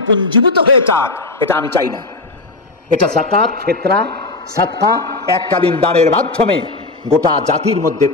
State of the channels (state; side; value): quieter; right; 3.3 dB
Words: পুঞ্জীভূত হয়ে যাক, এটা আমি চাই না। এটা যাকাত, ফিতরা, সাদকা, এককালীন দানের মাধ্যমে গোটা জাতির মধ্যে